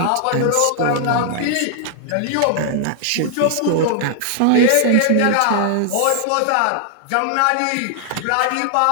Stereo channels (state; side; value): different; both; correlation 0.00